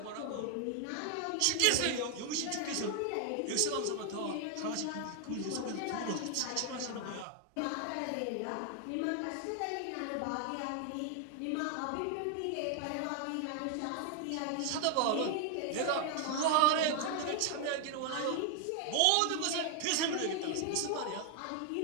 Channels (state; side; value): different; both; correlation 0.00